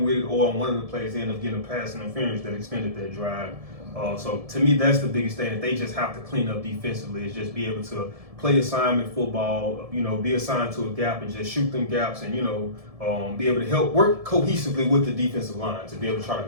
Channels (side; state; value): left; late; 1.7 ms